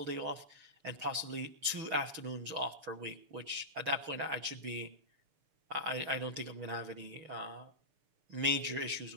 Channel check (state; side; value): late; left; 6.3 ms